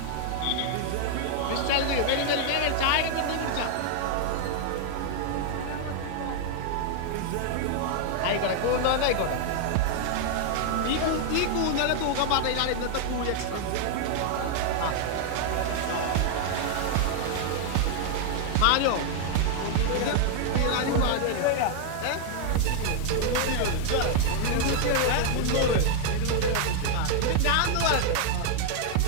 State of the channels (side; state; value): both; different; correlation 0.00